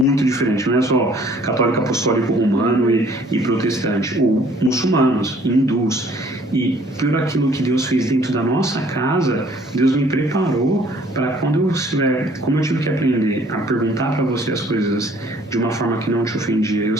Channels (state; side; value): normal; both; correlation 0.58